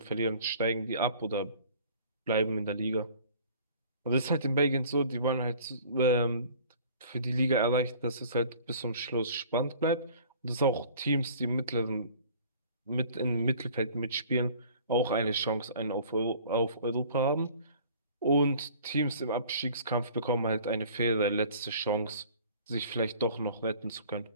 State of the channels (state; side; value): inverted; both; correlation -0.49